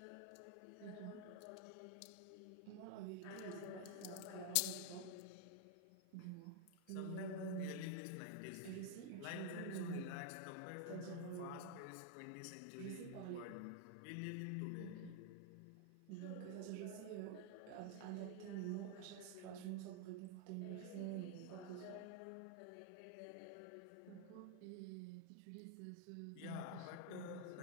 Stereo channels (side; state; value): both; different; correlation 0.00